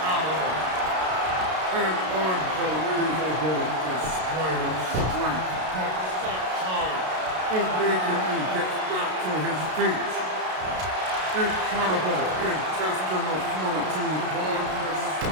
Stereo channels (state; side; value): late; left; 32 ms